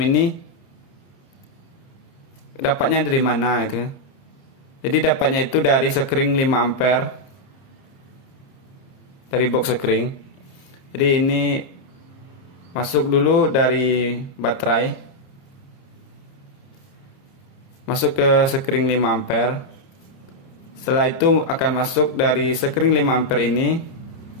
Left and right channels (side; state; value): right; late; 30 ms